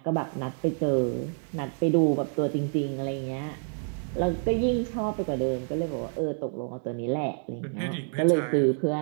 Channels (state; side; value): silent; left; 59 dB below the other